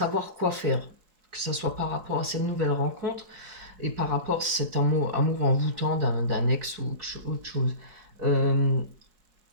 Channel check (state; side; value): late; left; 4.7 ms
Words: quoi faire, que ce soit par rapport à cette nouvelle rencontre et par rapport à cet amour envoûtant d'un ex ou autre chose. Euh,